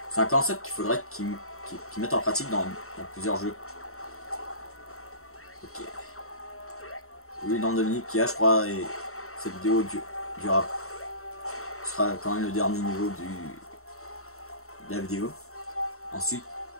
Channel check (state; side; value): late; right; 0.63 ms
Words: C'est un concept qu'il faudrait qu'ils mettent en pratique dans plusieurs jeux. Ok. Oui, dans Dominique qui a, je crois, et cette vidéo durera. Ce sera quand même le dernier niveau de la vidéo. Ensuite,